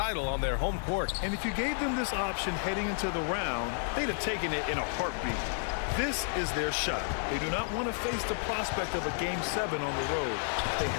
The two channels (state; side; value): silent; right; 55 dB below the other